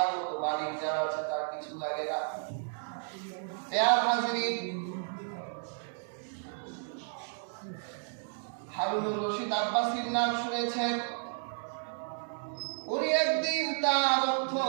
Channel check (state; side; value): silent; left; digital silence